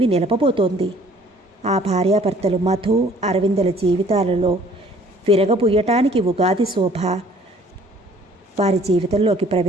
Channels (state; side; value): normal; both; correlation 0.56